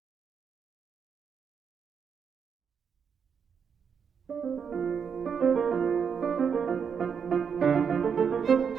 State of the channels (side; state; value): left; quieter; 6.8 dB